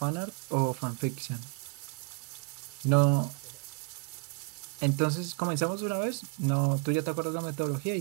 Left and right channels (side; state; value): left; quieter; 33.6 dB